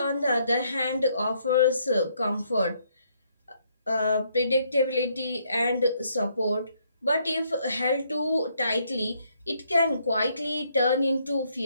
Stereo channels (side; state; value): both; inverted; correlation -0.71